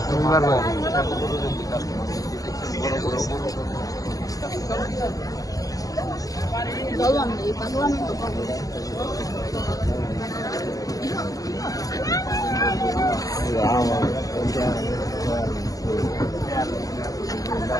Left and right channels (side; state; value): right; late; 0.17 ms